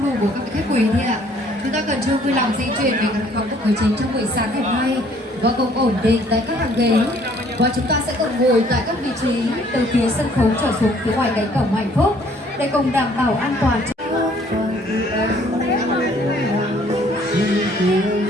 đủ của các vị khách quý thì ạ. Chúng ta cần chung vui lòng di chuyển về căn phòng của chính trong buổi sáng ngày hôm nay và cùng ổn định tại các hàng ghế. Và chúng ta sẽ cùng ngồi tại các vị trí từ phía sân khấu trở xuống phía ngoài cánh cổng hạnh phúc để cùng đảm bảo an toàn.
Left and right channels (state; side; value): normal; both; correlation 0.60